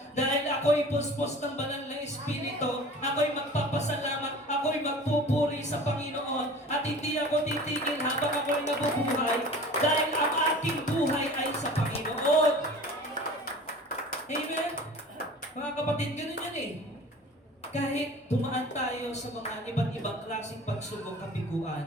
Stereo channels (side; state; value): both; normal; correlation 0.41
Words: Dahil ako'y puspos ng banal na Espiritu. Ako'y magpapasalamat. Ako'y magpupuri sa Panginoon. At hindi ako titigil habang ako'y nabubuhay. Dahil ang aking buhay ay sa Panginoon. Amen? Mga kapatid, ganun yan eh. Kahit dumaan tayo sa mga iba't ibang klaseng pagsubok,